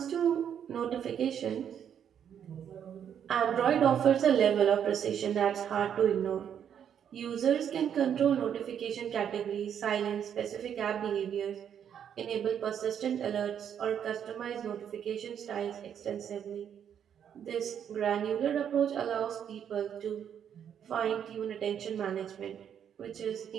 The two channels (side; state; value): left; quieter; 8.7 dB